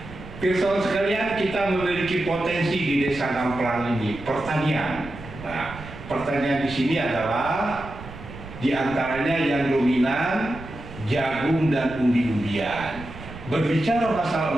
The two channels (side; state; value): right; noise; rumble, 14 dB below the sound